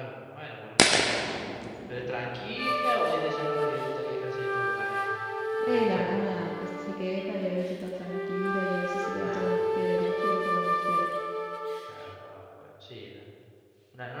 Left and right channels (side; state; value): both; identical; correlation 1.00